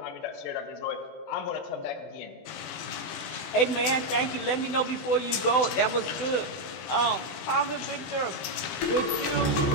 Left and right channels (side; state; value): right; late; 16 ms